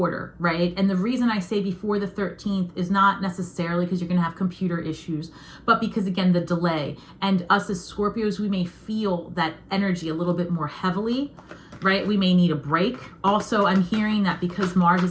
right? And the reason I say before the 13th is not necessarily because you're going to have computer issues, but because, again, the delay. And us as Scorpios, we may feel that energy a little bit more heavily, right? We may need a break. Also, I'm hearing that because Mars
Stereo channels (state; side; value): identical; both; correlation 1.00